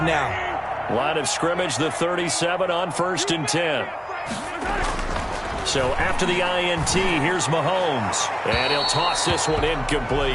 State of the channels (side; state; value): both; identical; correlation 1.00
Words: now. Line of scrimmage, the 37 on 1st and 10. So after the INT, here's Mahomes. And he'll toss this one